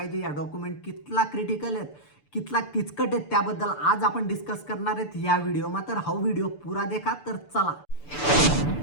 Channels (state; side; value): late; right; 6.8 ms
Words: या डॉक्युमेंट कितला क्रिटिकल आहेत कितला किचकट आहेत त्याबद्दल आज आपण डिस्कस करणार आहेत या व्हिडिओमा। तर हा व्हिडिओ पुरा देखा। तर चला